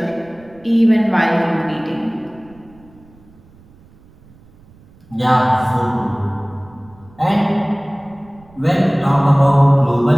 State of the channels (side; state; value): right; noise; rumble, 27 dB below the sound